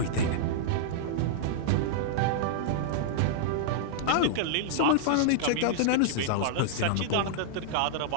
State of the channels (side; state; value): both; different; correlation -0.02